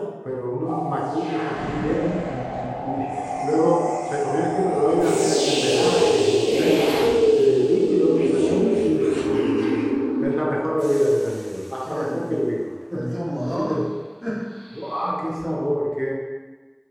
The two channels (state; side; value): identical; both; correlation 1.00